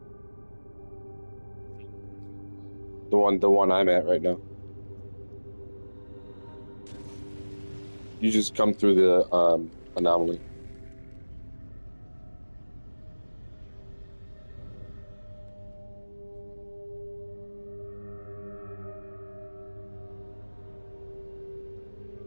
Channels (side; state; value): both; inverted; correlation -1.00